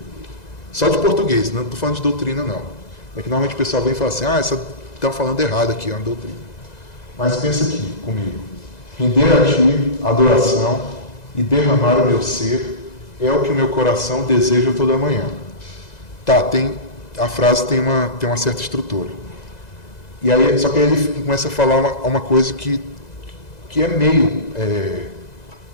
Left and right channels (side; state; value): right; late; 2.0 ms